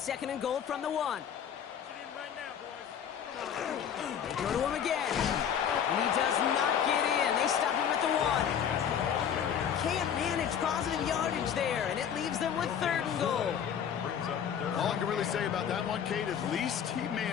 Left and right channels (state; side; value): quieter; right; 8.4 dB